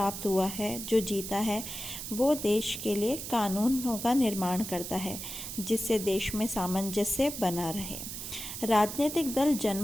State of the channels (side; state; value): right; noise; hiss, 7 dB below the sound